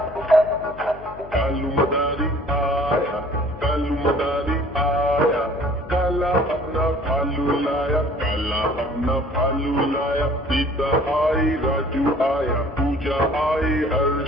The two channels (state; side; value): noise; left; hum, 17 dB below the sound